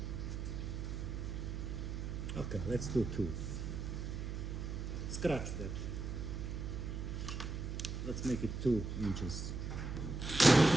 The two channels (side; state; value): right; noise; hum, 4 dB below the sound